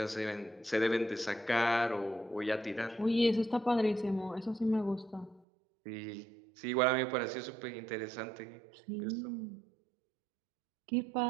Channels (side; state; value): left; drops out; at 5.5 s